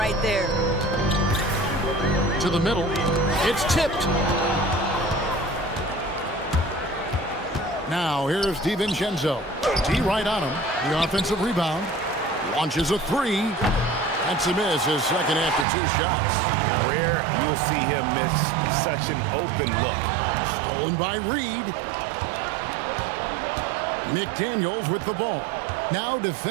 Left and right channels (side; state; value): left; drops out; at 15.7 s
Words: there. To the middle. It's tipped. Now here's DiVincenzo. D right on him. The offensive rebound. Launches a three. That's a miss, his second after 2 shots. Rare you'll see him miss such an open look. Stolen by Reed. McDaniels with the ball. Now